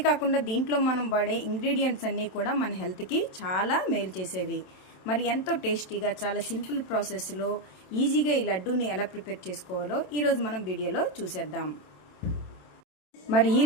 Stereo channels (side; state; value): right; late; 27 ms